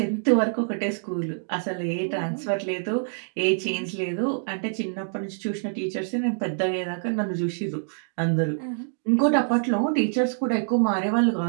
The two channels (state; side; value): silent; left; digital silence